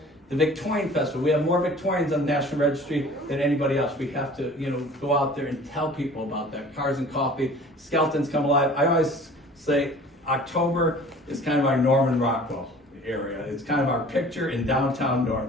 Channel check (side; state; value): both; normal; correlation 0.46